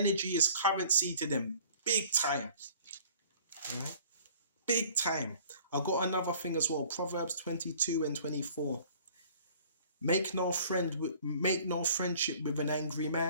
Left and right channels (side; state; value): both; inverted; correlation -0.52